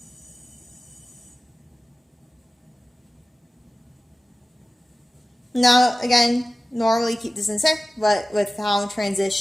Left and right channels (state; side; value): normal; both; correlation 0.96